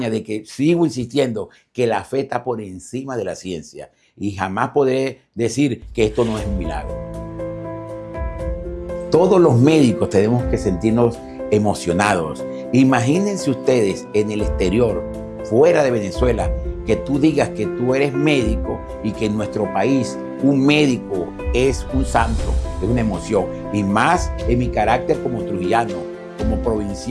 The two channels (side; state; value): both; identical; correlation 1.00